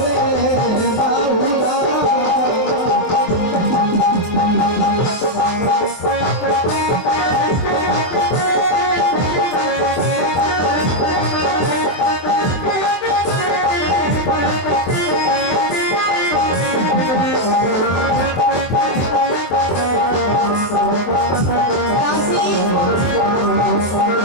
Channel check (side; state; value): right; late; 24 ms